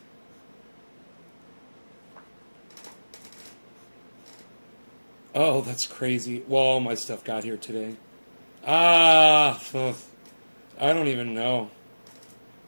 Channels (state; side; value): inverted; both; correlation -1.00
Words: Oh, that's crazy. Well, all my stuff got here today. I don't even know.